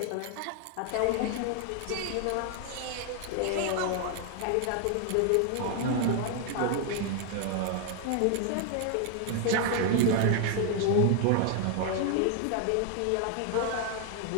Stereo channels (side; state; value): both; different; correlation 0.00